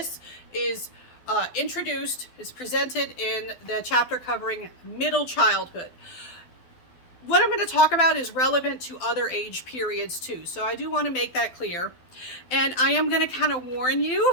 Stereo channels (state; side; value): late; right; 12 ms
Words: is presented in the chapter covering middle childhood. What I'm going to talk about is relevant to other age periods too, so I do want to make that clear. And I am going to kind of warn